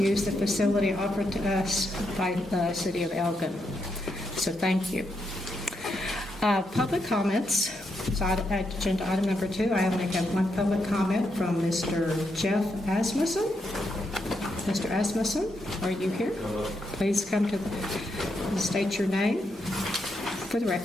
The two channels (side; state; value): both; normal; correlation 0.81